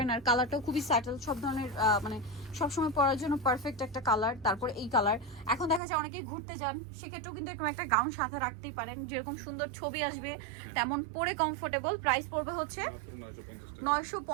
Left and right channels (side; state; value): left; drops out; at 5.8 s